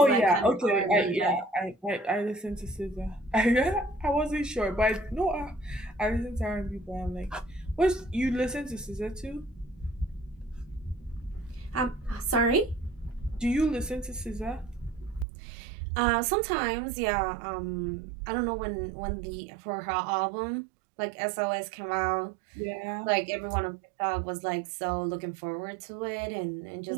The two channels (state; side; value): drops out; left; at 15.2 s